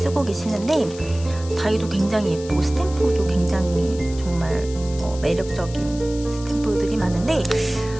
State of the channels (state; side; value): noise; left; hiss, 17 dB below the sound